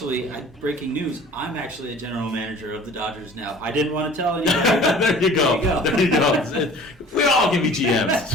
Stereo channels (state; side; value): normal; both; correlation 0.46